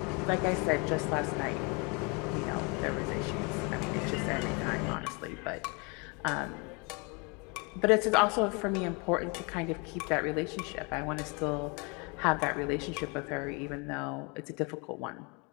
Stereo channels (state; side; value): quieter; right; 31.3 dB